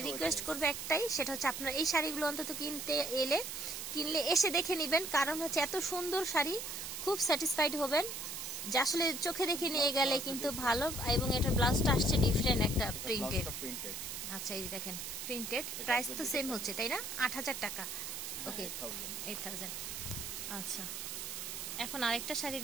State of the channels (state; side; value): noise; right; hiss, 6 dB below the sound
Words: রিকোয়েস্ট করব একটাই, সেটা হচ্ছে আপনারা এই শাড়িগুলো অন্তত কিনলে এসে দেখে নেবেন। কারণ হচ্ছে এত সুন্দর শাড়ি, খুব স্যাটিসফাইড হবেন যে আসলে চোখে দেখে নিয়ে গেলে কিন্তু ভালো। এবং এটার ব্লাউজটা আসছে ডিফারেন্ট একটা প্রিন্টেড। আচ্ছা, এই যে দেখেন প্রিন্টেড। প্রাইস তো সেম হচ্ছে, তাই না? 8000 টাকা। ওকে, 8000। আচ্ছা, এখন আরেকটা শাড়ি